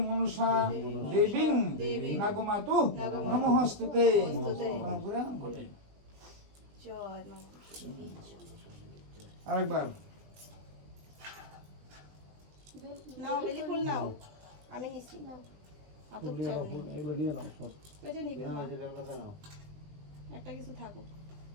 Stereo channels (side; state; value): left; late; 20 ms